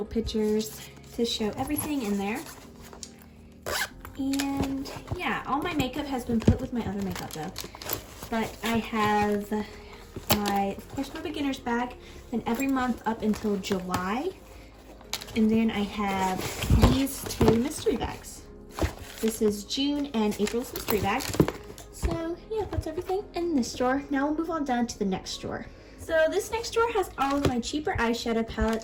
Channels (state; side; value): identical; both; correlation 1.00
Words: pictures to show everything in there. And yeah, all my makeup has been put with my other makeup though. But I have of course, my beginner's bag, then every month up until July. And then I have these two mystery bags. This is June and April's mystery bag. So yeah, that's everything in this drawer. Now we'll move on down to the next drawer. So this next drawer has all of my cheaper eyeshadow